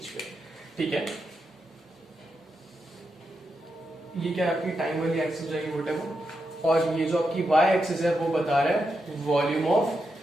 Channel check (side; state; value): both; normal; correlation 0.85